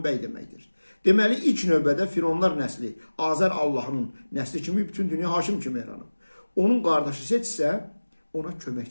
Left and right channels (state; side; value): inverted; both; correlation -1.00